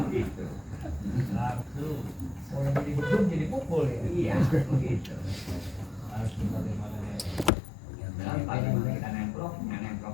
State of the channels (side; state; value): right; drops out; at 7.5 s